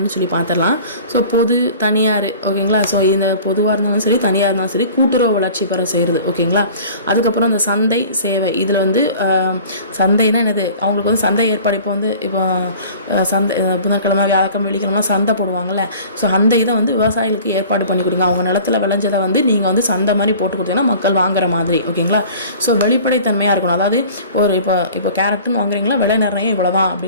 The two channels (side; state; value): both; inverted; correlation -0.45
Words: சொல்லி பார்த்துடலாம். ஸோ பொது, தனியார். ஓகேங்களா. ஸோ இந்த பொதுவாக இருந்தாலும் சரி, தனியாக இருந்தாலும் சரி, கூட்டுறவு வளர்ச்சி பெற செய்கிறது. ஓகேங்களா. அதுக்கப்புறம் இந்த சந்தை சேவை, இதில் வந்து சந்தைன்னா என்னது, அவங்களுக்கு வந்து சந்தை ஏற்பாடு. இப்போ சந்தை புதன்கிழமை, வியாழக்கிழமை, வெள்ளிக்கிழமை சந்தை போடுவாங்கள்ல. ஸோ அந்த இதை வந்து விவசாயிகளுக்கு ஏற்பாடு பண்ணி கொடுங்க. அவங்க நிலத்தில் விளைஞ்சதை வந்து நீங்கள் வந்து சந்தை மாதிரி போட்டு கொடுத்தீங்கன்னா மக்கள் வாங்குற மாதிரி. ஓகேங்களா. ஸோ வெளிப்படைத்தன்மையாக இருக்கணும். அதாவது ஒரு இப்போ கேரட்டுன்னு வாங்குறீங்களா, விலை நிர்ணயம் இவ்வளோ தான்